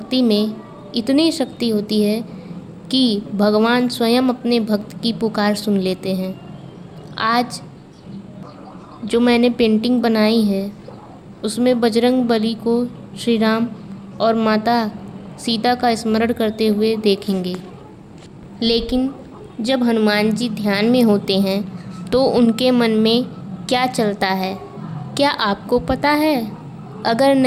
में इतनी शक्ति होती है कि भगवान स्वयं अपने भक्त की पुकार सुन लेते हैं। आज जो मैंने पेंटिंग बनाई है उसमें बजरंग बली को श्री राम और माता सीता का स्मरण करते हुए देखेंगे। लेकिन जब हनुमान जी ध्यान में होते हैं तो उनके मन में क्या चलता है, क्या आपको पता है? अगर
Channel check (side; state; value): both; identical; correlation 1.00